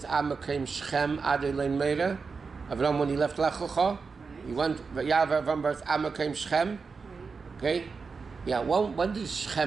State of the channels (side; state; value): left; quieter; 4.9 dB